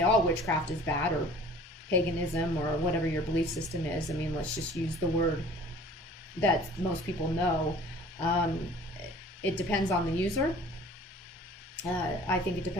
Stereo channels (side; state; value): both; normal; correlation 0.48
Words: all witchcraft is bad, or paganism, or whatever your belief system is. I mean, let's just use the word that most people know. It depends on the user. I think it